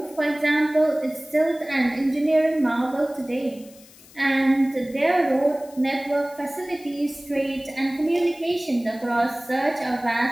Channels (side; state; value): left; noise; hiss, 23 dB below the sound